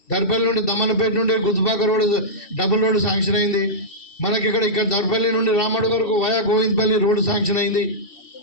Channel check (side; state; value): right; late; 2.7 ms